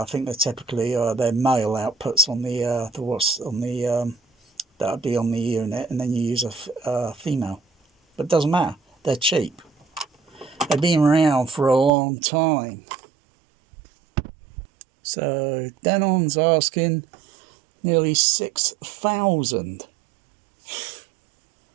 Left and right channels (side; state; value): left; drops out; at 11.9 s